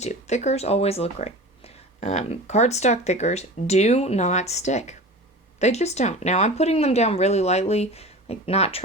Thickers always look great. Cardstock thickers do not stick. They just don't. Now, I'm putting them down really lightly, like not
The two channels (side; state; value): both; normal; correlation 0.34